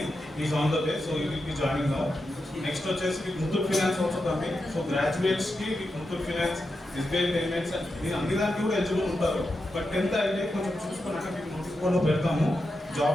is on the way. So you will B joining now. Next వచ్చేసి మీకు Muthoot finance also coming. So గ్రాడ్యుయేట్స్కి మీకు ముత్తూట్ ఫైనాన్స్, ఎస్బీఐ పేమెంట్స్ మీరు అన్ని దానికి కూడా ఎలిజిబుల్ ఉంటారు. బట్ 10th అయితే కొంచెం చూసుకున్నాక మీకు నోటీస్ బోర్డులో పెడతాము,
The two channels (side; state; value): both; normal; correlation 0.88